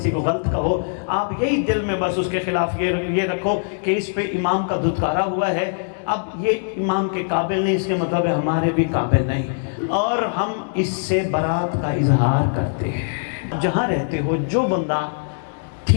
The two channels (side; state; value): right; silent; digital silence